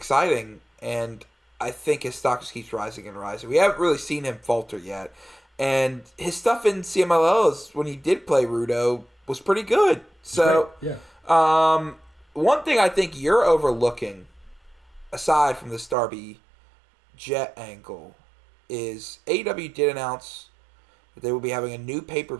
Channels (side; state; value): left; drops out; at 16.0 s